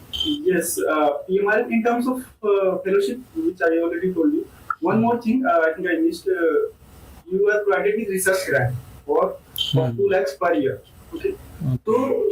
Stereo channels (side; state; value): both; identical; correlation 1.00